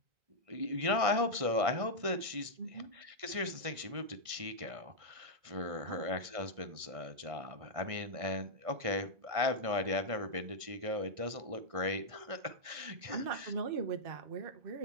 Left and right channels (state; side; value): late; left; 1.6 ms